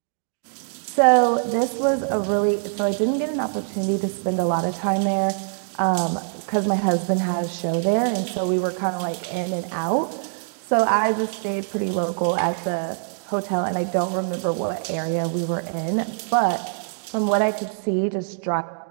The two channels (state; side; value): silent; left; digital silence